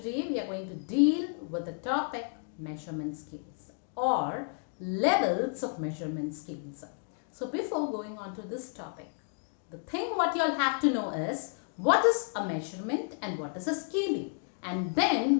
we are going to deal with the topic measurement scales or levels of measurement scales. So before going on to this topic, the thing what you all have to know is what is a measurement and what is a scaling, and then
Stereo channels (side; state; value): right; silent; 57 dB below the other